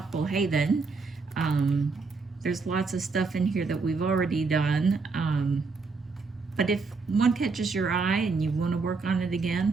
Haven. There's lots of stuff in here that we've already done, but if one catches your eye and you want to work on it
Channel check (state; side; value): quieter; left; 4.3 dB